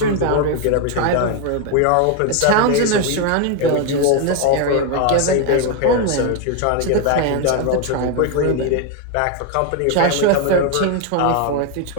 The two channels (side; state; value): both; different; correlation 0.01